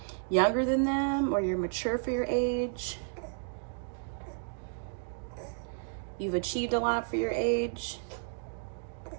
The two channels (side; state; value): left; silent; digital silence